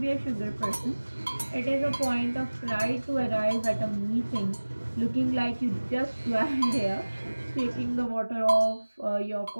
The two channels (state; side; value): inverted; both; correlation -1.00